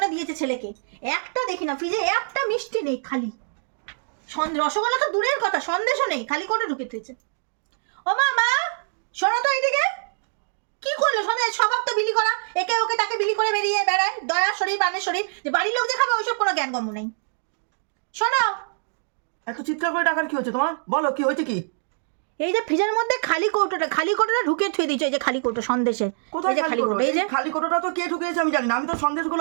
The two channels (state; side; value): silent; left; digital silence